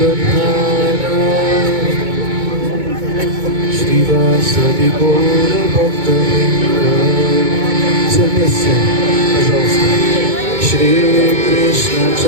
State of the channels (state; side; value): late; left; 2.2 ms